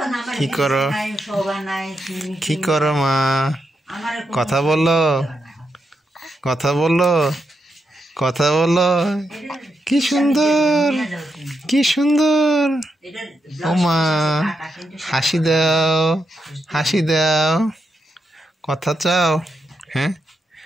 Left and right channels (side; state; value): both; normal; correlation 0.83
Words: কি করো? কি করো মা? কথা বলো, কথা বলো, কথা বলো। কি সুন্দর, কি সুন্দর। ও মা, হাসি দাও, হাসি দাও। কথা চাও? হ্যাঁ,